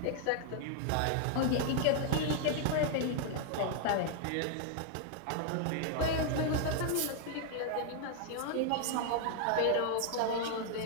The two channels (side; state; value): both; different; correlation 0.00